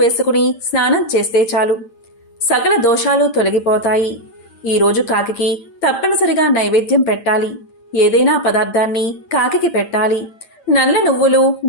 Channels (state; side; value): late; right; 8.8 ms